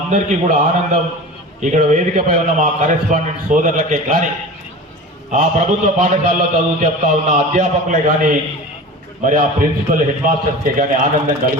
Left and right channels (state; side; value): normal; both; correlation 0.35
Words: కూడా ఆనందం. ఇక్కడ వేదికపై ఉన్న మా కరెస్పాండెంట్ సోదరులకే కానీ, ఆ ప్రభుత్వ పాఠశాలలో చదువు చెప్తా ఉన్న అధ్యాపకులే కానీ, మరి ఆ ప్రిన్సిపల్ హెడ్ మాస్టర్స్కే కానీ ఆనందం